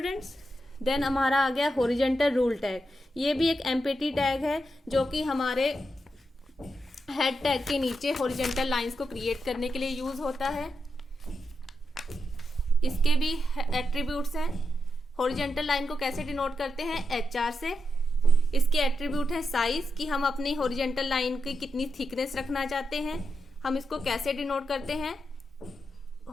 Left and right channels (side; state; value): both; normal; correlation 0.86